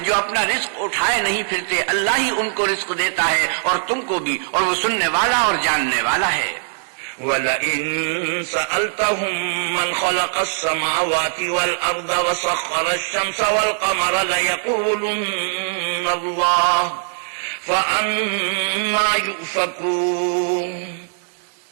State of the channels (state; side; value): silent; left; digital silence